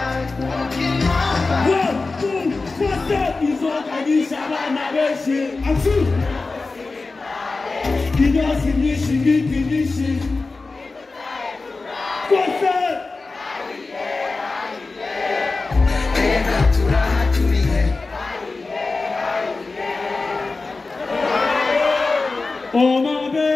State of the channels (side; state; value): right; quieter; 3.7 dB